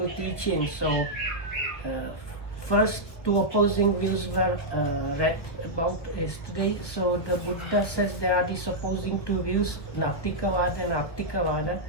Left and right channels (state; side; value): late; right; 1.2 ms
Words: teaching. So first two opposing views were read about yesterday. So the Buddha says there are these opposing two views, Nattikavada and Attikavada.